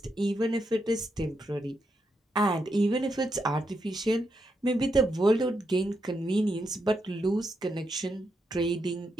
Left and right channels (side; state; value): both; normal; correlation 0.82